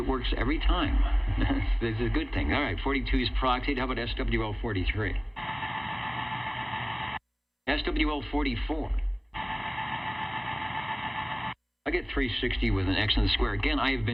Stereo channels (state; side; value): identical; both; correlation 1.00